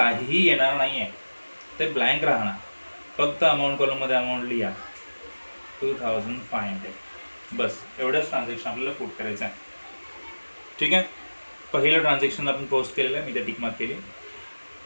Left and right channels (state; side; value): inverted; both; correlation -1.00